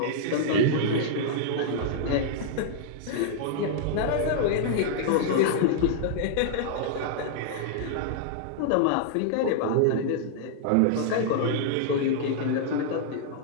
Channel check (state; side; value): different; both; correlation -0.01